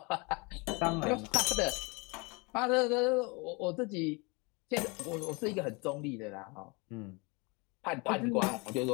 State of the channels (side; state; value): right; quieter; 28.6 dB